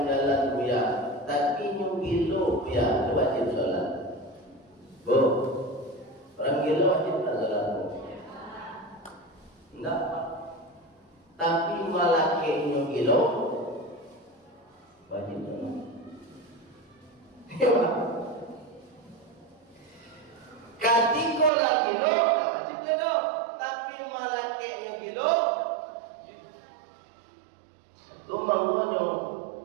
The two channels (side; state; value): left; drops out; at 21.5 s